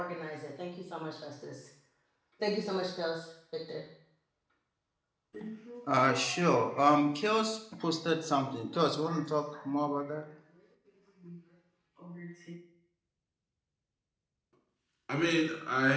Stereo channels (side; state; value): both; identical; correlation 1.00